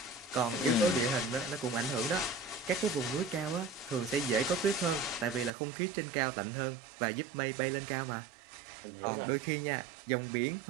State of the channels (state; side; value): drops out; left; at 5.5 s